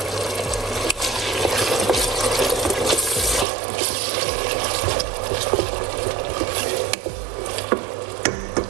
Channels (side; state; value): left; drops out; at 3.5 s